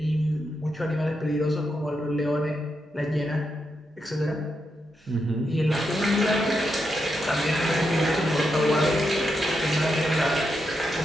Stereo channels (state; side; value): normal; both; correlation 0.84